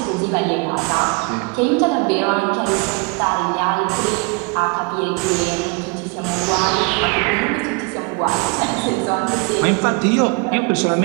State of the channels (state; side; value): quieter; left; 30.1 dB